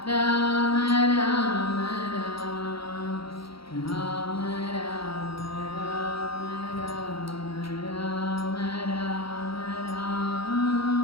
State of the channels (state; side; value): late; right; 0.75 ms